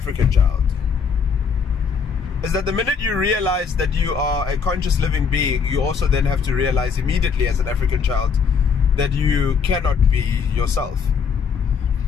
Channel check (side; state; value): right; quieter; 6.0 dB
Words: child. is that the minute you realize that you are a conscious living being, you also then have to realize immediately as an African child that you cannot be yourself.